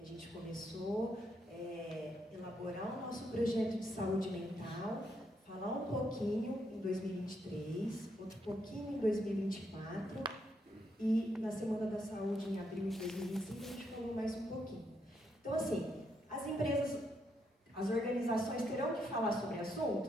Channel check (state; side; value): normal; both; correlation 0.77